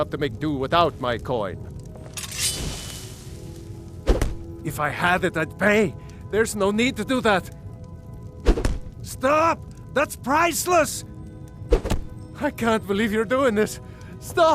to make do without my coin. If I had it, I'd pay. There's no need to do that. Stop! That's priceless! I can't believe you're doing this.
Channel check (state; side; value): identical; both; correlation 1.00